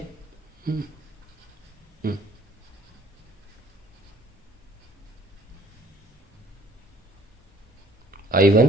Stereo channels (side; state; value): both; normal; correlation 0.58